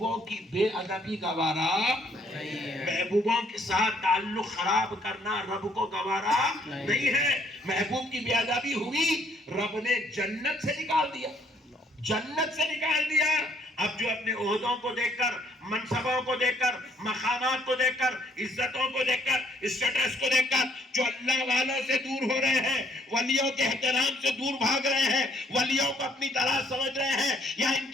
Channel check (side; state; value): both; normal; correlation 0.66